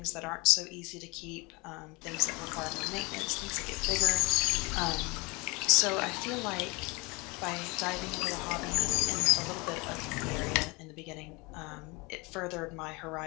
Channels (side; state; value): right; quieter; 26.6 dB